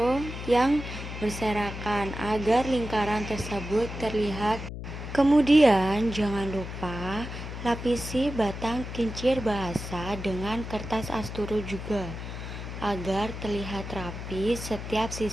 yang berserakan agar lingkaran tersebut terlihat. Kemudian, jangan lupa lapisi batang kincir bahasa dengan kertas asturo juga, agar terlihat rapi setiap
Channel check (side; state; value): left; noise; hum, 8 dB below the sound